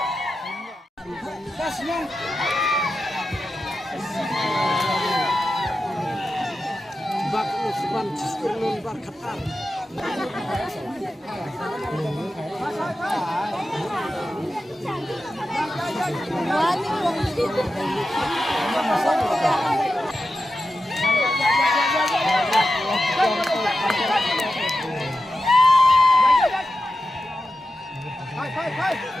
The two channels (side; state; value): both; normal; correlation 0.91